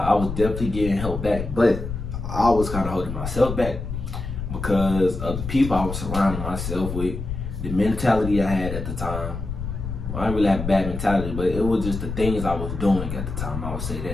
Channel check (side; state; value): left; noise; rumble, 6 dB below the sound